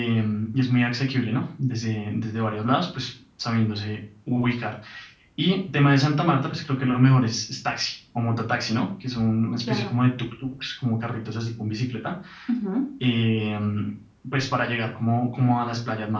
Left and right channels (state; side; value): identical; both; correlation 1.00